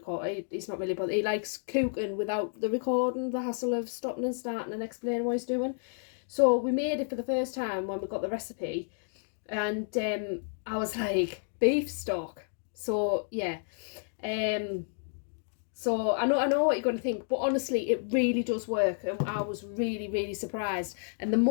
he's not really bothered, he likes cooking without the recording, the hassle of stopping and starting and explaining what he's doing. So we made it for the first time when we got the recipe, and I was like, beef stock. So yeah, so I know what you're going to think, but honestly, it really does work, and I was really surprised. And the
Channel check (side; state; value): right; silent; digital silence